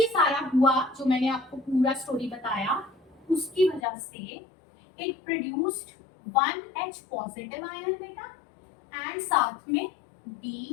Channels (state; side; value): drops out; right; at 3.8 s